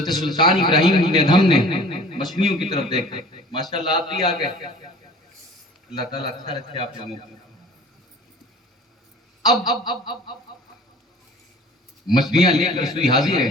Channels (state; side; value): normal; both; correlation 0.46